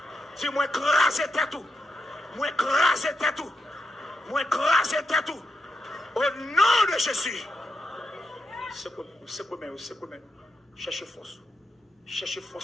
Dis moi craser tête ou. Moi craser tête ou. Moi craser tête ou. Au nom de Jésus. C'est quoi, cherchez force. Cherchez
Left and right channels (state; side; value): normal; both; correlation 0.86